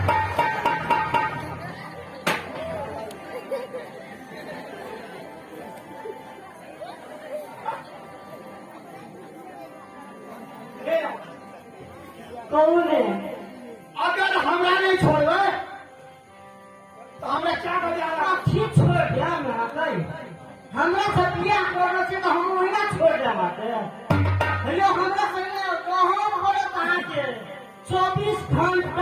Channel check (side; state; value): both; identical; correlation 1.00